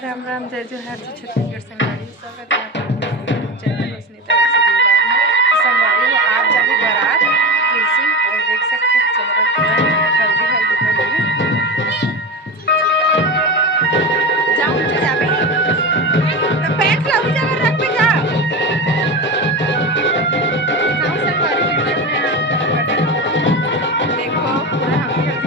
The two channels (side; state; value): both; normal; correlation 0.24